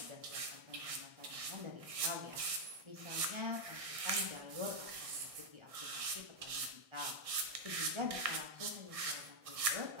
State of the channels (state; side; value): late; left; 1.6 ms